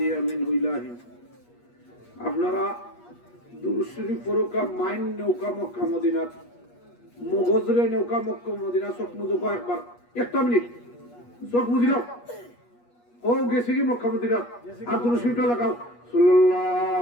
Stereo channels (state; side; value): late; right; 8.4 ms